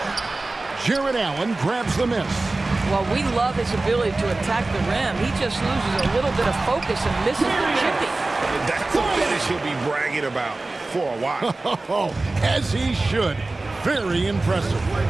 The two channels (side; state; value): left; quieter; 3.1 dB